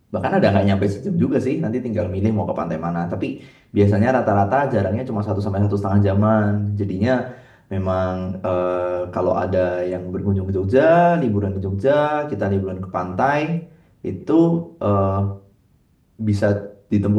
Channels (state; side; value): identical; both; correlation 1.00